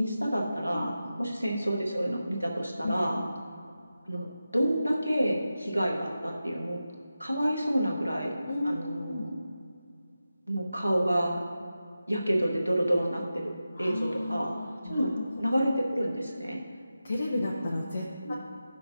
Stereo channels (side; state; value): both; inverted; correlation -0.92